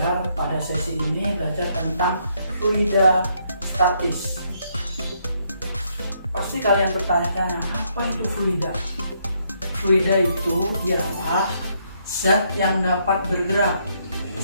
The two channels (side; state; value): both; inverted; correlation -0.73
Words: pada sesi ini belajar tentang fluida statis. Pasti kalian bertanya-tanya, apa itu fluida? Fluida itu ialah zat yang dapat bergerak.